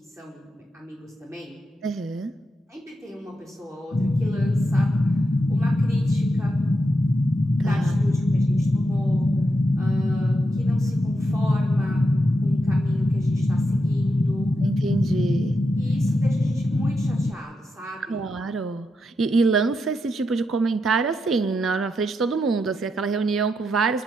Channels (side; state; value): both; normal; correlation 0.84